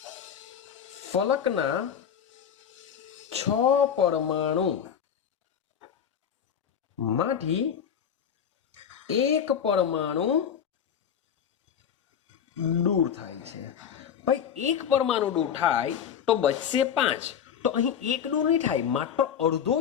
ફલકના 6 પરમાણુ માંથી એક પરમાણુ દૂર થાય છે। ભાઈ એક પરમાણુ દૂર થાય તો બચશે 5, તો અહીં એક દૂર નહીં થાય, માત્ર અડધો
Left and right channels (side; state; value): right; quieter; 8.3 dB